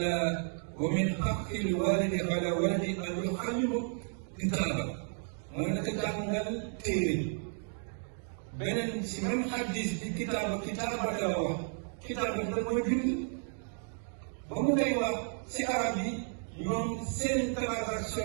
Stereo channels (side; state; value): left; silent; 56 dB below the other